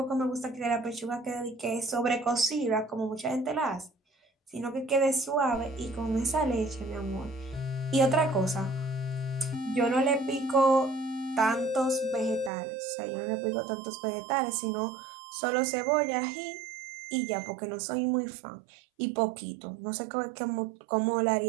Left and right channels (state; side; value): drops out; left; at 12.5 s